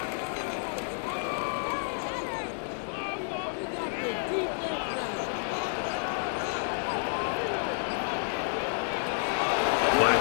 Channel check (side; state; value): right; silent; digital silence